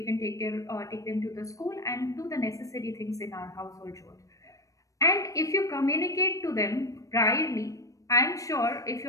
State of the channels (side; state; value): right; late; 0.16 ms